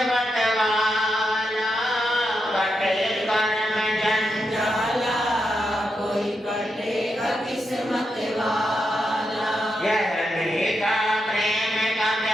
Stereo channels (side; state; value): both; normal; correlation 0.85